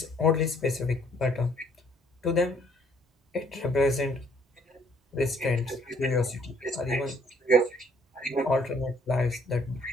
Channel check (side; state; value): both; normal; correlation 0.63